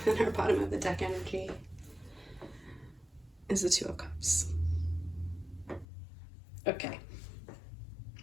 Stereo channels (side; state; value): right; drops out; at 5.9 s